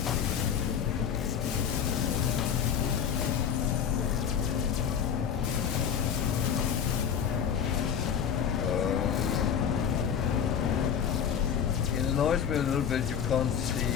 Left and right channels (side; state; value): right; quieter; 8.1 dB